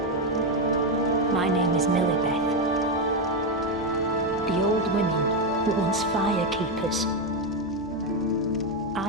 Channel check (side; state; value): both; normal; correlation 0.07